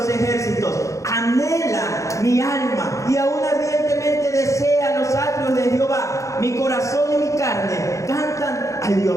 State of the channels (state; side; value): late; right; 0.15 ms